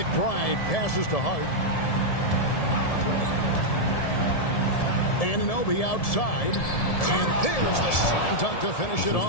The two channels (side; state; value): right; late; 1.7 ms